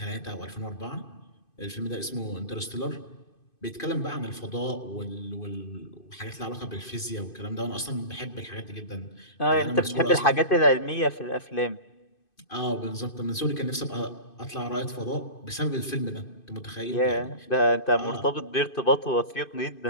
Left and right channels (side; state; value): right; late; 2.5 ms